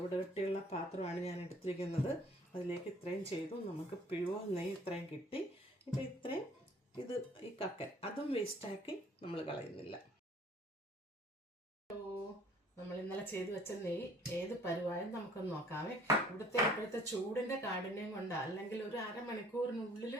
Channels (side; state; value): both; normal; correlation 0.56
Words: കെട്ടിയുള്ള പാത്രമാണ് ഞാൻ എടുത്തിരിക്കുന്നത്. അതിലേക്ക് ഇത്രയും ചെയ്തു. നമുക്ക് പ്യുവർ നെയ്യ് ഇത്രയും കിട്ടി. ഇപ്പം ഇത്രയും ഈ കക്കൻ അതും വേസ്റ്റാക്കി നമ്മൾ കളയുന്നില്ല. നമ്മൾ ഇന്നലെ ചെയ്ത് വെച്ച നെയ്യ് ഏത് പരുവായും നമുക്കൊന്ന് നോക്കാമേ. ഇപ്പോഴത്തെ ചൂടിൻ്റെ കാഠിന്യം കൊണ്ടാ, അല്ലെങ്കിൽ ഒരു അരമണിക്കൂറിനുള്ളിൽ